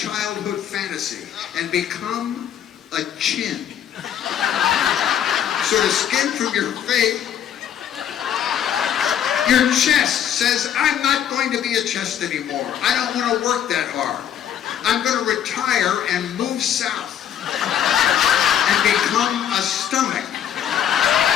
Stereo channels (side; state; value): right; quieter; 9.7 dB